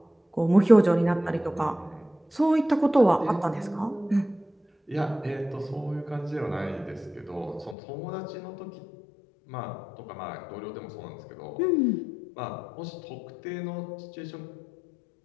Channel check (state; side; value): drops out; right; at 7.8 s